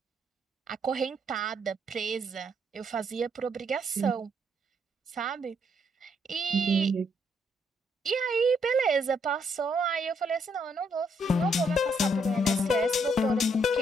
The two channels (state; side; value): normal; both; correlation 0.73